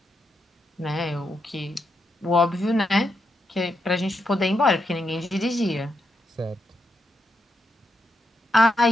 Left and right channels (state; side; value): normal; both; correlation 0.82